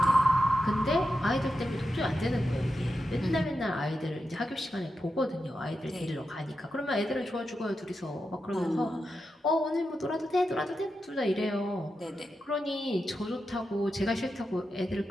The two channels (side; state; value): both; normal; correlation 0.89